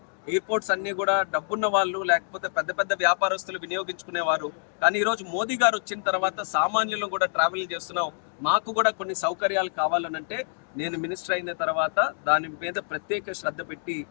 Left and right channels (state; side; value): silent; right; digital silence